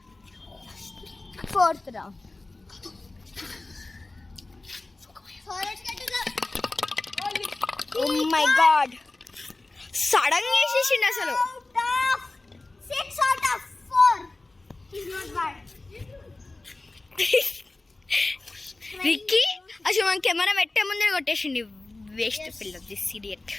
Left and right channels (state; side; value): quieter; right; 3.1 dB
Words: 4th round. So let's get to the Oh my god, sudden గా వేసేసిండు అసలు. out of 6 out of 4. He's not bad. Ricky అసలు మన కెమెరా పెట్టే ముందే కొట్టేసిండి. వేస్ట్ పిల్ల, this idiot.